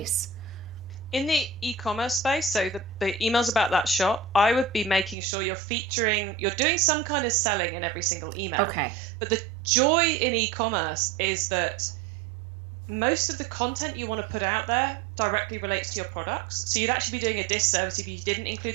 in the e-commerce space, so the emails about that shop, I would be making sure you're doing some kind of selling in every single email. Okay. But the joy in e-commerce is that most of the content you want to put out there directly relates to your products. So you'd actually be doing a disservice if you didn't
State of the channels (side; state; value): left; drops out; at 5.2 s